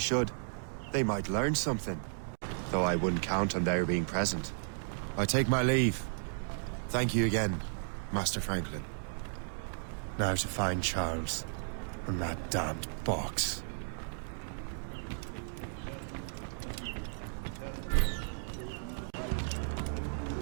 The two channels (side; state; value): left; silent; digital silence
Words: They might learn something. Though I wouldn't count on their being present. I take my leave. Thank you again, Master Franklin. Now to find Charles and that damned box.